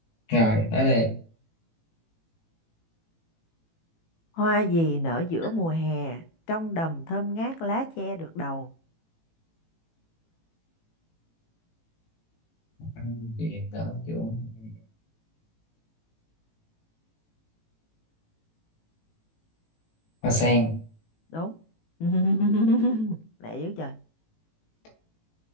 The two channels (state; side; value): late; right; 18 ms